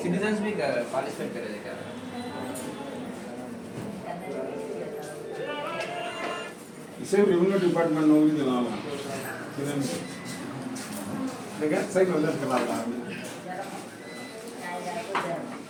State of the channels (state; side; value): identical; both; correlation 1.00